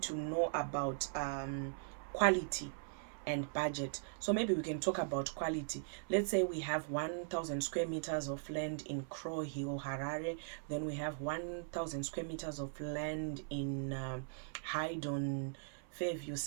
to know about quality and budget. So maybe we can talk about quality. Let's say we have 1,000 square meters of land in Crow Hill, Harare. Then we have 1,000 square meters of land in Haydon, Fairview,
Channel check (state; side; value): silent; left; 51 dB below the other